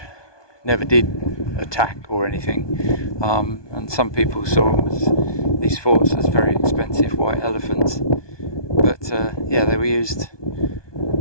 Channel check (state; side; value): late; right; 1.2 ms